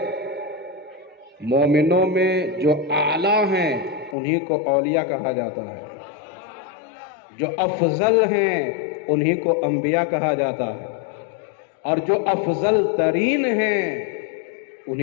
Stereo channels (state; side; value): drops out; right; at 4.2 s